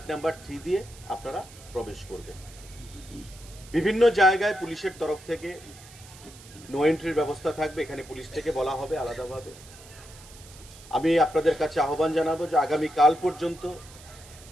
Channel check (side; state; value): right; noise; hiss, 20 dB below the sound